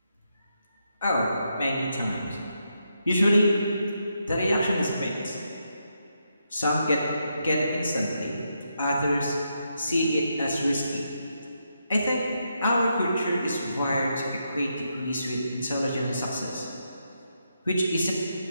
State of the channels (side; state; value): both; inverted; correlation -0.81